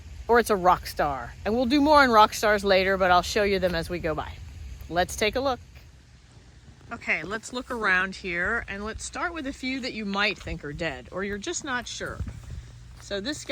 Or it's a rock star? And we'll do more on rock stars later, but I'll show you them as we go by. Let's take a look. Okay, let's look around here and let's start with a few that you might think are dead or you're just not sure. So this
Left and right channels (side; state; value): both; identical; correlation 1.00